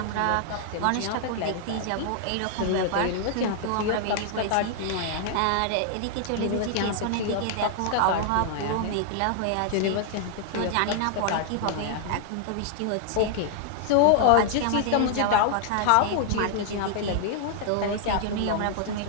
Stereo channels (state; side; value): different; both; correlation 0.00